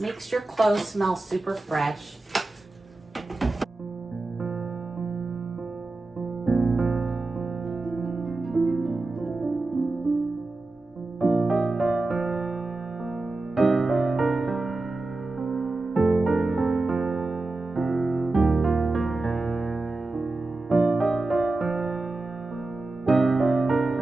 makes your clothes smell super fresh.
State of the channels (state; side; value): quieter; left; 3.2 dB